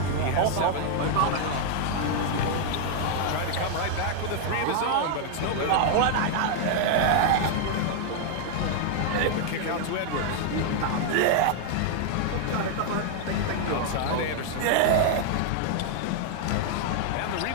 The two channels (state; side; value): different; both; correlation 0.00